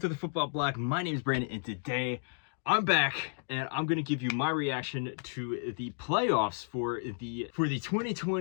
the Football Bloc. My name is Brandon, and today I'm back, and I'm going to give you my reaction to the playoffs for the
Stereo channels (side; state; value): right; silent; digital silence